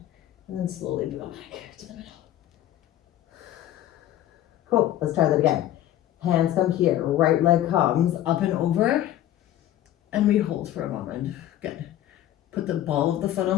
and then slowly go back to the middle. Cool, let's try that again. Hands come here, right leg comes up and over, and we hold for a moment. Good. Put the ball of the foot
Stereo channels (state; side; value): quieter; right; 12.7 dB